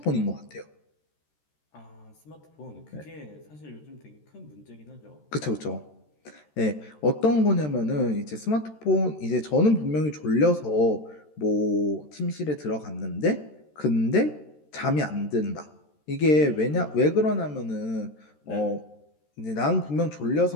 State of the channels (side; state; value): right; late; 13 ms